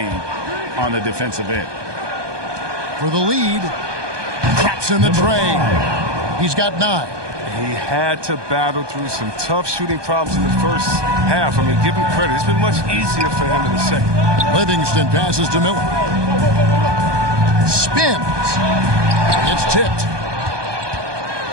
on the defensive end. For the lead, drops in the tray. He's got 9. He had to battle through some tough shooting problems in the first half. I mean, give him credit. It's been much easier for him in the second. Livingston passes to Miller. Spins. It's tipped.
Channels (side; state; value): left; late; 1.2 ms